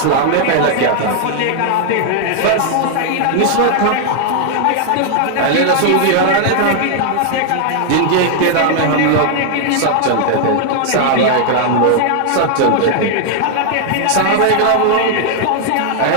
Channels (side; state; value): both; different; correlation 0.00